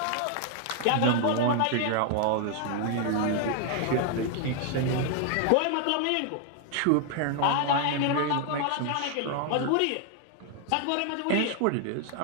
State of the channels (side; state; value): both; different; correlation 0.00